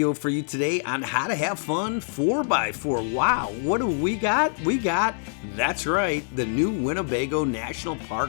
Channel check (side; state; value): right; silent; digital silence